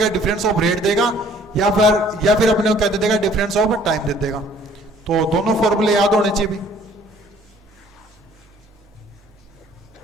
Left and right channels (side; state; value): both; normal; correlation 0.57